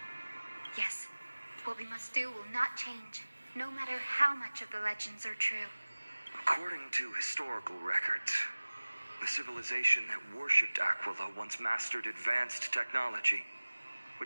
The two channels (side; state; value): both; inverted; correlation -1.00